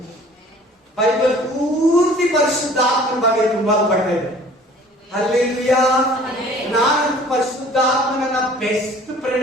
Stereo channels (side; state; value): both; normal; correlation 0.50